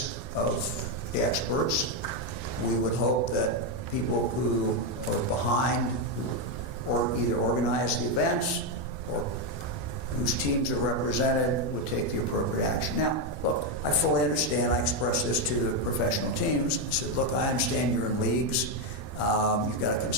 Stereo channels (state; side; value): late; right; 12 ms